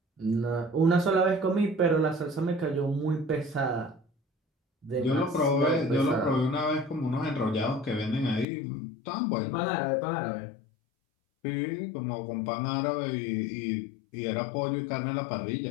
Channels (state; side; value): drops out; right; at 8.5 s